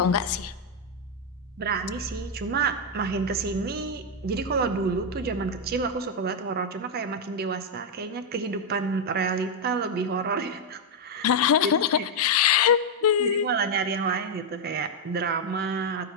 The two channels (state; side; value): normal; both; correlation 0.00